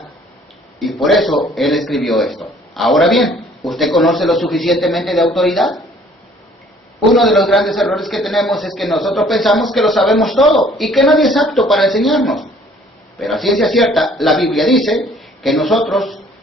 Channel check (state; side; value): normal; both; correlation 0.57